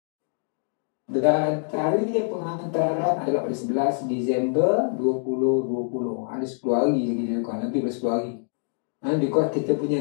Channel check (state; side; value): silent; right; digital silence